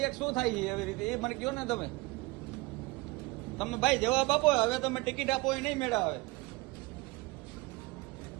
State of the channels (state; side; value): quieter; left; 23.9 dB